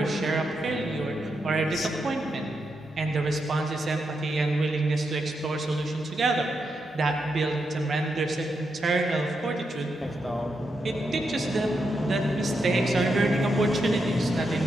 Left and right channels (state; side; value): normal; both; correlation 0.84